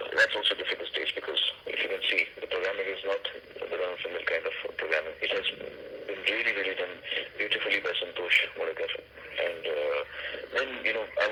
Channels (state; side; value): identical; both; correlation 1.00